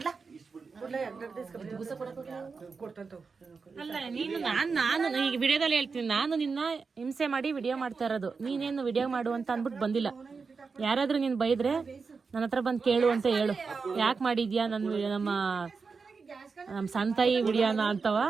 ಅಲ್ಲ ನೀನು ನಾನು ಈಗ ವಿಡಿಯೋದಲ್ಲಿ ಹೇಳ್ತೀನಿ ನಾನು ನಿನ್ನ ಹಿಂಸೆ ಮಾಡಿ ವಿಡಿಯೋ ಮಾಡ್ತಾ ಇರೋದು ನೀನೇನು ವಿಡಿಯೋ ಮಾಡು ಅಂತ ಅಂದ್ಬಿಟ್ಟು ಬಂದಿಲ್ಲ ಯಾರಾದ್ರೂ ನೀನ್ ಬೈದ್ರೆ ನನ್ನ ಹತ್ರ ಬಂದು ಕೇಳು ಅಂತ ಹೇಳು ಯಾಕೆ ಮಾಡಿದ್ಯಾ ನಮ್ಮ ಸಂತಾಯಿ ವಿಡಿಯೋನ ಅಂತವ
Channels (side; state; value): left; quieter; 4.9 dB